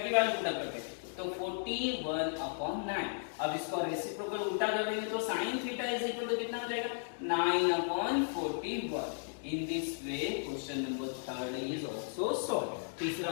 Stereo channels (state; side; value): silent; right; digital silence